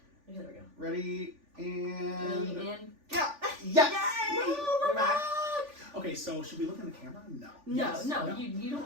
Okay, there we go. Ready and yeah. Yes. Yay! We're back. Okay, so should we look in the camera? No. No, Yes. no. You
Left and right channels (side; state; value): left; late; 3.5 ms